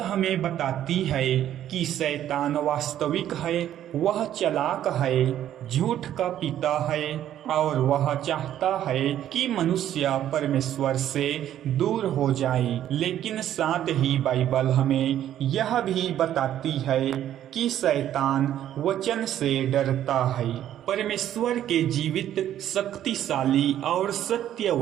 बताती है कि शैतान वास्तविक है, वह चालाक है, झूठ का पिता है और वह चाहता है कि मनुष्य परमेश्वर से दूर हो जाए। लेकिन साथ ही बाइबल हमें यह भी बताती है कि शैतान वचन से डरता है। परमेश्वर के जीवित, शक्तिशाली और सत्य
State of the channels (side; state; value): left; quieter; 11.4 dB